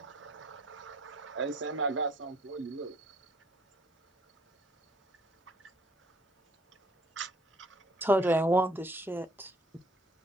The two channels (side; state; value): both; normal; correlation 0.61